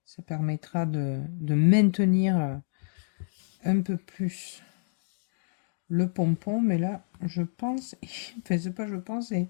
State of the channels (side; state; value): right; silent; digital silence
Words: Ça permettra de maintenir un peu plus le pompon, mais là, je pense, enfin, c'est pas je pense, il